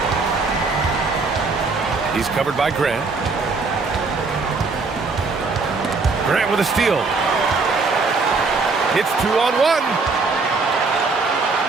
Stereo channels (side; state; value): left; quieter; 4.1 dB